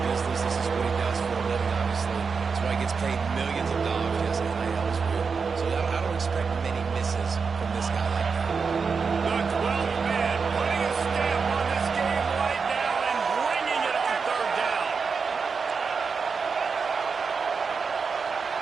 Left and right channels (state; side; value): quieter; left; 5.3 dB